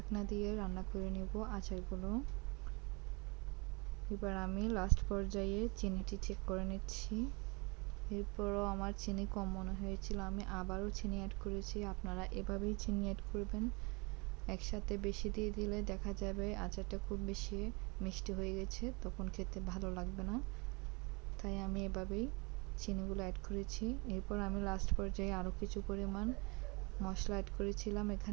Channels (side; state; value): left; quieter; 29.8 dB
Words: দিয়ে রান্না করে নেব আচারগুলো। এবার আমি লাস্ট পর্যায়ে চিনিটি চেক করে নিচ্ছি। এরপরও আমার চিনি কম মনে হয়েছিল, আমি আবারও চিনি অ্যাড করেছি। আপনারা এভাবেই চিনি অ্যাড করবেন, একসাথে বেশি দিয়ে দিলে দেখা যাবে আচারটা খুব বেশি মিষ্টি হয়ে গেছে, তখন খেতে ভালো লাগবে না। তাই আমি এভাবেই চিনিগুলো অ্যাড করেছি। এরপর আমি লাস্ট পর্যায়ে আরও কিছু পরিমাণ মশলা অ্যাড করেছিলাম